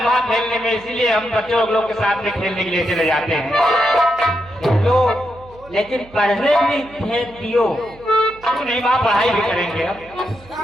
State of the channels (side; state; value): right; noise; hum, 24 dB below the sound